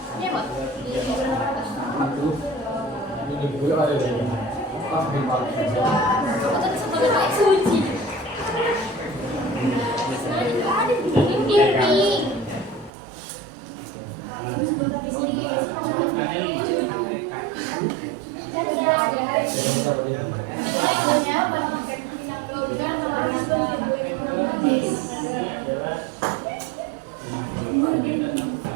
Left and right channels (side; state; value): left; drops out; at 12.9 s